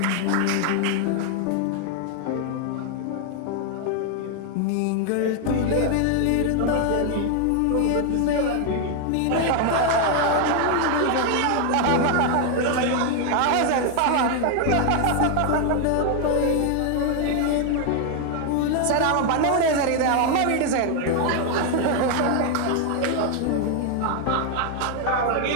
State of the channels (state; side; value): different; both; correlation 0.00